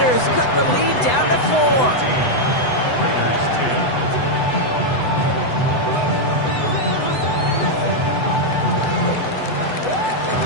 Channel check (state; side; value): late; right; 8.0 ms